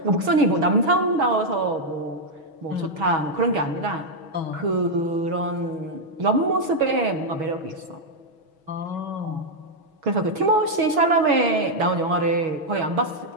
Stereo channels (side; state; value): left; late; 6.3 ms